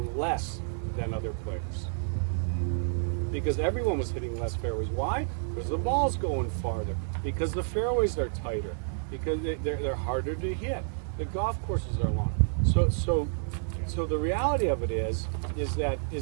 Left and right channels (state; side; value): silent; left; 56 dB below the other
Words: less than other players, because everyone was hitting less fairways. Why? Because the ball's going farther, because the fairways are tighter, because they're harder to hit. The golf courses are longer. So the reality of it is that